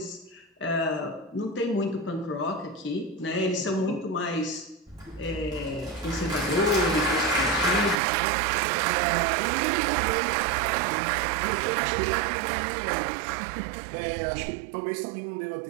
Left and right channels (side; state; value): left; drops out; at 8.0 s